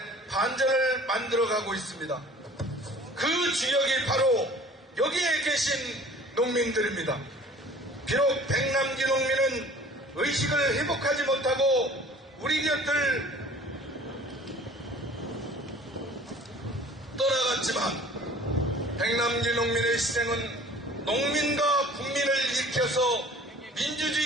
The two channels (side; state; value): both; normal; correlation 0.48